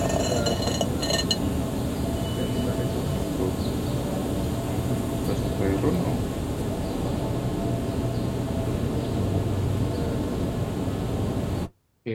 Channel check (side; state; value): both; identical; correlation 1.00